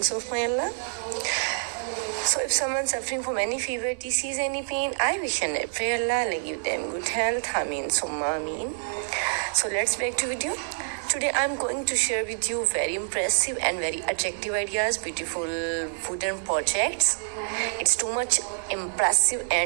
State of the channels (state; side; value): silent; left; 60 dB below the other